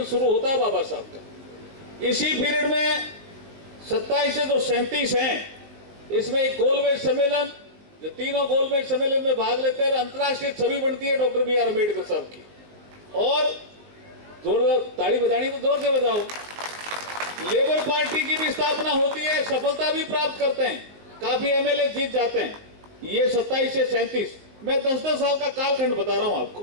शुरू होता है बाबा साहब का। इसी पीरियड में 27 से जो 37 हैं, इसमें एक गोलमेज सम्मेलन, जो तीनों गोलमेज सम्मेलन में भाग लेते हैं, अंतर्राष्ट्रीय छवि बनती है डॉक्टर BR अम्बेडकर साहब की। और जोर ताली बजानी तो जोर से बजाओ। लेबर पार्टी की भी स्थापना होती है, सफलता भी प्राप्त करते हैं, काफी MLA जीत जाते हैं। ये 27 से 37, मैं 10-10 साल का कालखंड बता रहा हूं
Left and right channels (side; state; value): left; late; 19 ms